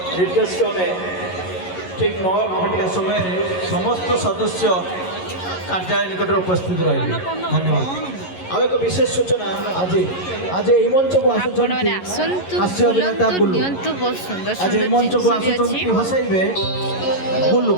निर्देश क्रमे ठीक 9 घंटा समय समस्त सदस्य कार्यालय निकट उपस्थित रहे। धन्यवाद। आ एक विशेष सूचना आज आज यही मंच को हास्य अभिनेता बुल्लू आज यही मंच को हसैबे बुल्लू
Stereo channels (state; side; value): late; right; 11 ms